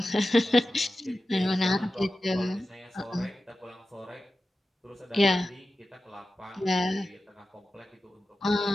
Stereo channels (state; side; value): normal; both; correlation 0.93